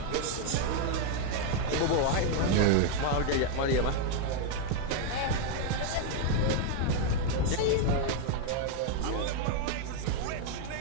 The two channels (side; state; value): both; different; correlation 0.00